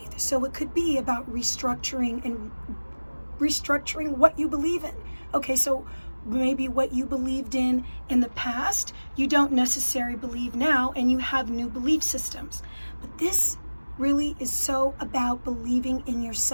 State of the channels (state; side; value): inverted; both; correlation -1.00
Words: So it could be about restructuring what you believe in. Okay, so maybe what you believed in the past, you don't necessarily believe now, and you have new belief systems. But this really is so about believing in